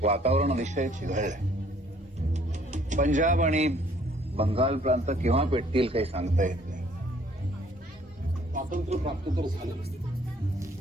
वातावरण अतिशय चिघळलंय. पंजाब आणि बंगाल प्रांत केव्हा पेटतील काही सांगता येत नाही. स्वातंत्र्य प्राप्त तर झालं,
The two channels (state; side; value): normal; both; correlation 0.60